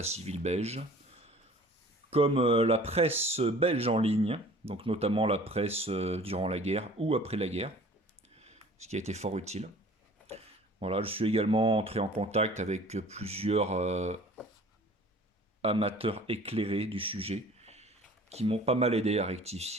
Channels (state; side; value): normal; both; correlation 0.48